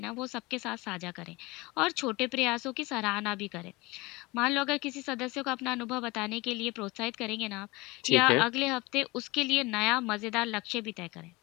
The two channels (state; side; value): quieter; right; 23.1 dB